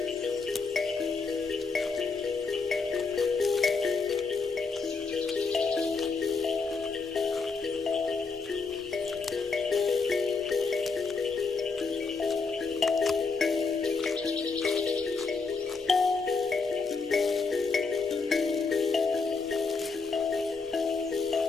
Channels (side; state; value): right; quieter; 4.5 dB